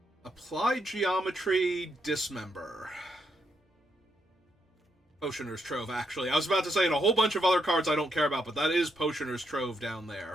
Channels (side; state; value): both; normal; correlation 0.78